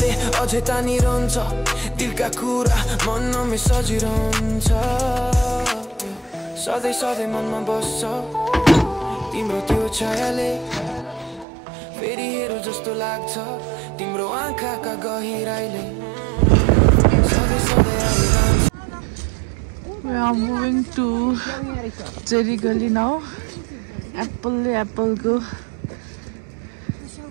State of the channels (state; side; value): drops out; left; at 11.5 s